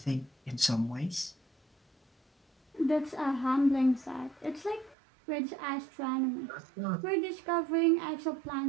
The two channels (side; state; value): left; drops out; at 5.0 s